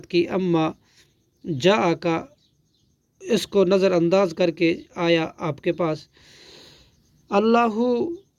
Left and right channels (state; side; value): identical; both; correlation 1.00